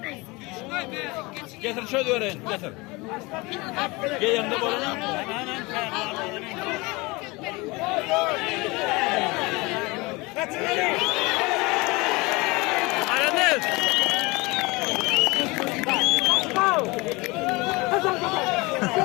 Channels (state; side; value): quieter; right; 24.3 dB